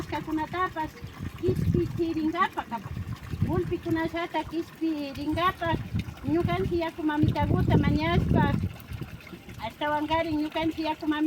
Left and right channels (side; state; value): both; identical; correlation 1.00